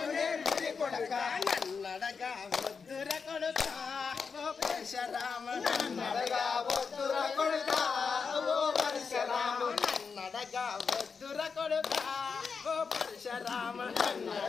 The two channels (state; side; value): quieter; right; 5.5 dB